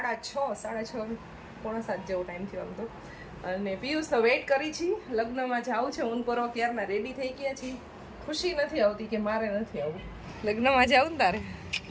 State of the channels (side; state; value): both; identical; correlation 1.00